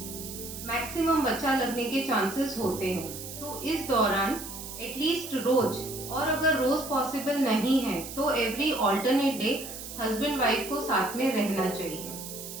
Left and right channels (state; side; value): noise; right; hiss, 10 dB below the sound